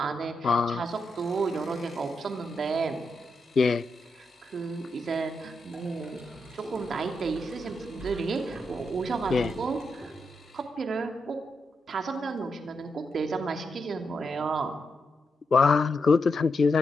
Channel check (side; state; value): both; normal; correlation 0.84